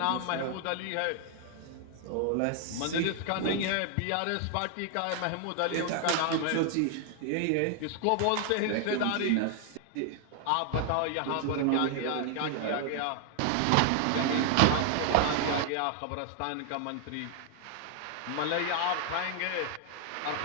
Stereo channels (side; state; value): both; different; correlation 0.00